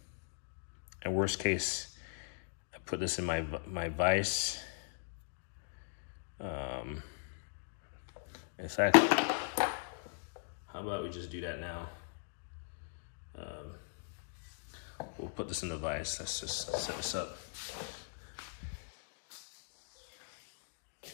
worst case, I put this in my vise. In fact, how about we just do that now? We'll put this in the vise. Let's just set this up.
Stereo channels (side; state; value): right; silent; digital silence